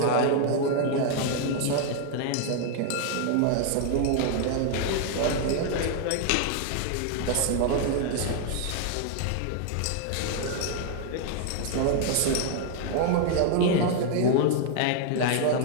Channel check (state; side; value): different; both; correlation 0.00